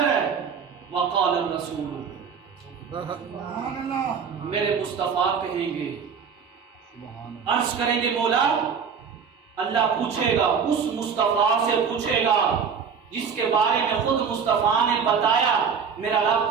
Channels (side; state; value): left; quieter; 6.5 dB